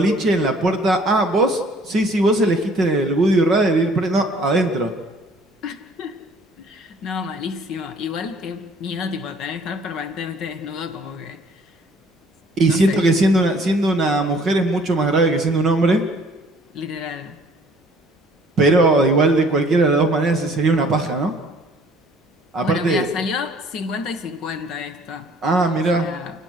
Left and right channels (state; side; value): normal; both; correlation 0.56